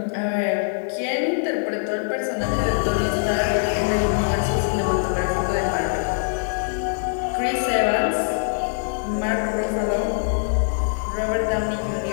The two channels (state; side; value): silent; right; digital silence